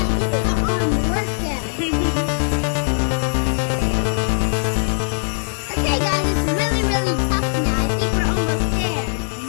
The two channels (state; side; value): silent; right; digital silence